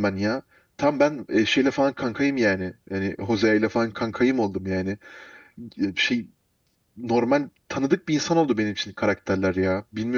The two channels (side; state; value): both; identical; correlation 1.00